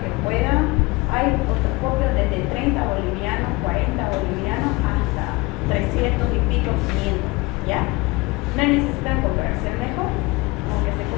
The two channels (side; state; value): right; quieter; 23.6 dB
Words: puedan. Hay otoscopios desde 30 bolivianos, 40 bolivianos hasta 300 y pico, 500, ¿ya? No necesitan comprarse el mejor, aunque se